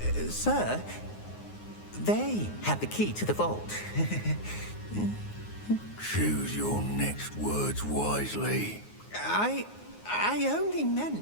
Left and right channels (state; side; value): late; right; 9.5 ms